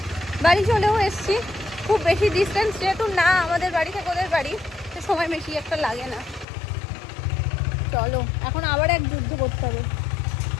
বাড়ি চলেও এসছি, খুব বেশি ডিস্টেন্স যেহেতু না আমাদের বাড়ি থেকে ওদের বাড়ি, সে সময় বেশি একটা লাগে না। চলো, এখন আবার এক যুদ্ধ করতে হবে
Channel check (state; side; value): drops out; right; at 6.5 s